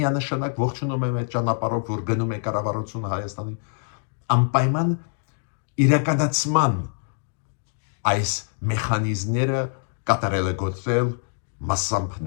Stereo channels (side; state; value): right; silent; digital silence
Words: ողջունում եմ այդ ճանապարհով, որ գնում է կառավարությունը Հայաստանի, անպայման իրականացման այս մեխանիզմները կատարելագործել, մասամբ